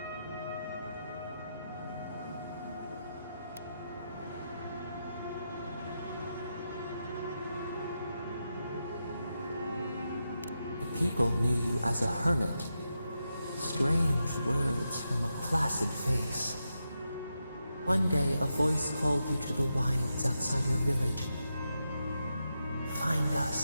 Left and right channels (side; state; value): both; inverted; correlation -0.86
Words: People knew you as a hermit. Strange words from a placid face. One day a voice called you to the wilds outside your village. Find